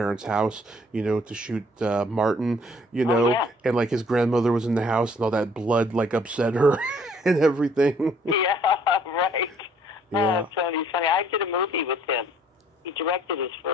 house, to shoot Martin, and like his grandmother was in the house and all that blood like upset her and everything. Yeah, right. Yeah. Oh, Tony's funny. I did a movie with him. He directed his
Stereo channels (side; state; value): both; normal; correlation 0.61